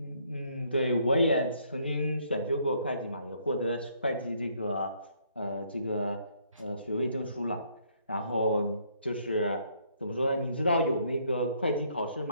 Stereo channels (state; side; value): inverted; both; correlation -0.67